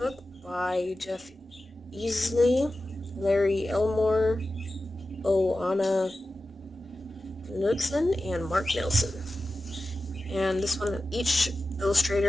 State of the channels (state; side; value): normal; both; correlation 0.94